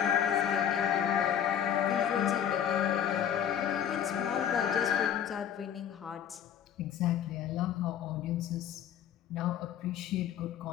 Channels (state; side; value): quieter; right; 9.4 dB